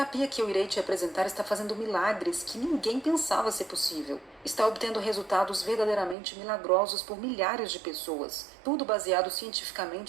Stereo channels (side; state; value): left; drops out; at 6.2 s